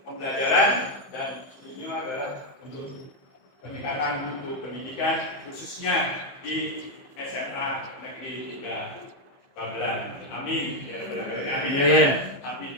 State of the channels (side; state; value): right; late; 15 ms